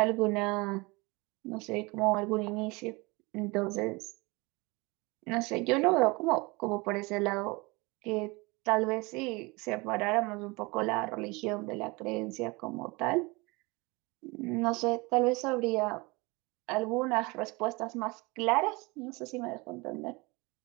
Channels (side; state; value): left; quieter; 25.6 dB